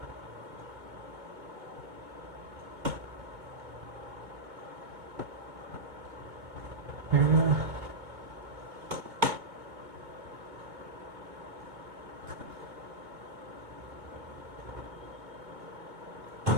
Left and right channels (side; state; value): left; late; 2.2 ms